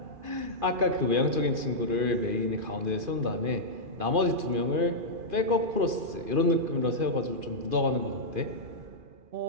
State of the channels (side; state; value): left; late; 2.5 ms